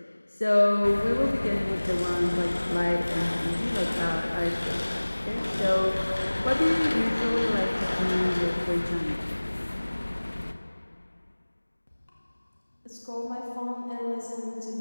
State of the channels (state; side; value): inverted; both; correlation -1.00